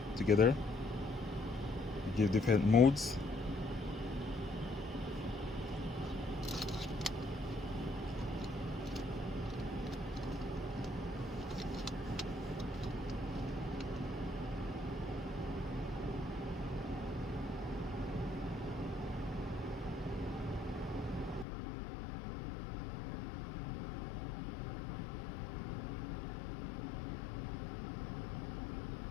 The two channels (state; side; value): drops out; right; at 21.5 s